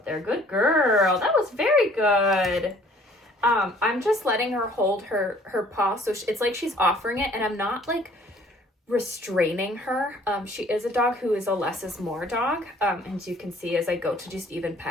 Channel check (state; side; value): normal; both; correlation 0.56